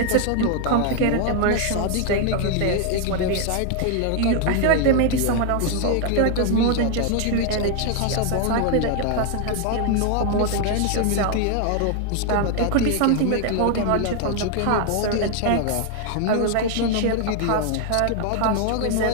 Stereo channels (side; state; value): both; different; correlation 0.00